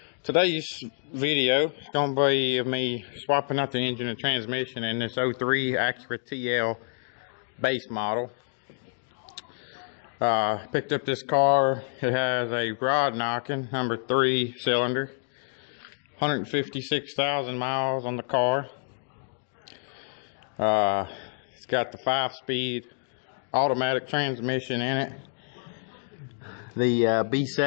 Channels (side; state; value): right; silent; digital silence